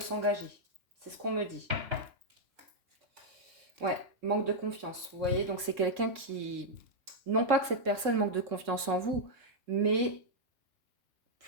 C'est ce qu'on me dit. Ouais, manque de confiance, vous voyez. Donc, c'est quelqu'un qui... Non pas que cette personne manque de confiance en vous, mais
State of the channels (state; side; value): late; left; 3.6 ms